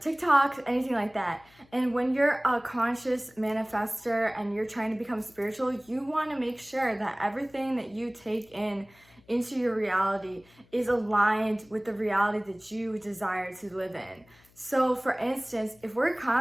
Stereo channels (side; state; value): left; noise; hum, 30 dB below the sound